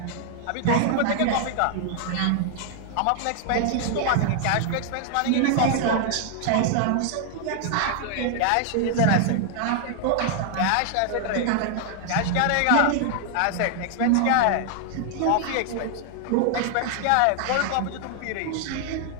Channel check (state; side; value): different; both; correlation 0.00